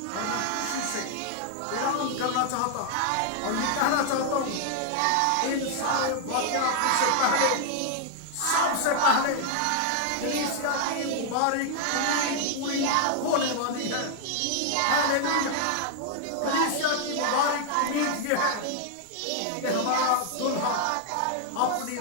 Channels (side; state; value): both; different; correlation 0.00